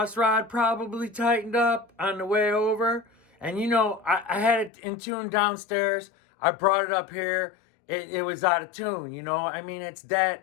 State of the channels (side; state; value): right; drops out; at 4.7 s